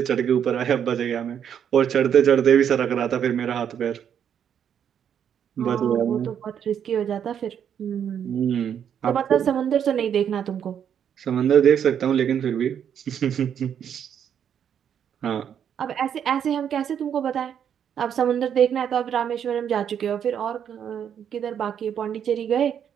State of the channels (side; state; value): left; quieter; 8.6 dB